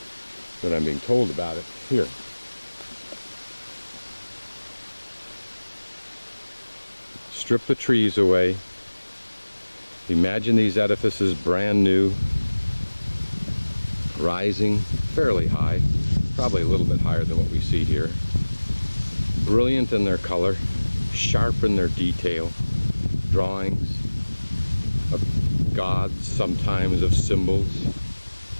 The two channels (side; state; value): both; inverted; correlation -1.00